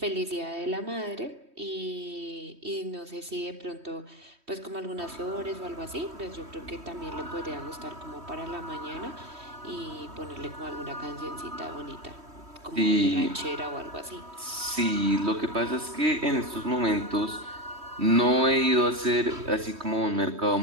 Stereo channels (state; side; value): late; left; 3.1 ms